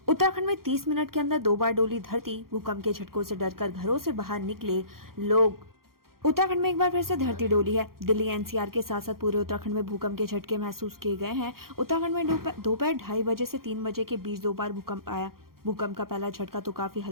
उत्तराखंड में 30 मिनट के अंदर 2 बार डोली धरती, भूकंप के झटकों से डरकर घरों से बाहर निकले लोग। उत्तराखंड में एक बार फिर से धरती डोली है। दिल्ली NCR के साथ साथ पूरे उत्तराखंड में भूकंप के झटके महसूस किए गए हैं। उत्तराखंड में दोपहर 2:30 बजे से 3 बजे के बीच 2 बार भूकंप आया। भूकंप का पहला झटका तो काफी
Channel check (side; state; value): left; late; 0.93 ms